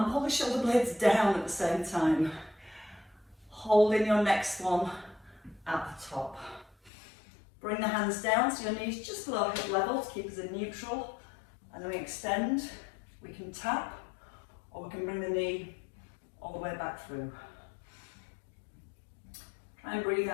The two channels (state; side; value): drops out; right; at 6.9 s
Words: pull the shoulder blades down at the same time. Holding your next one at the top. Bring the hands down so your knees just below hip level to keep us in neutral. And then we extend, we can tap, or we can bring the knee all the way back through. Try and breathe